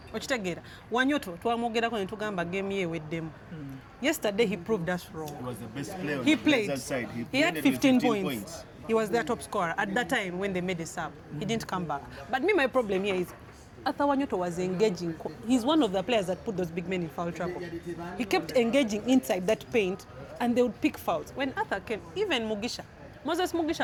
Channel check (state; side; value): identical; both; correlation 1.00